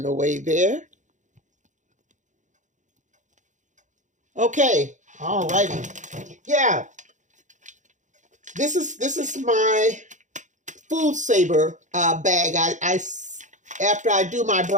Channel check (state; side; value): late; left; 0.36 ms